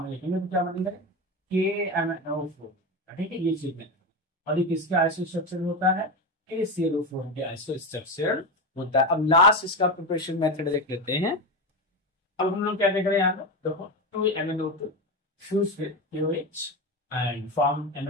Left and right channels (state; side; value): normal; both; correlation 0.17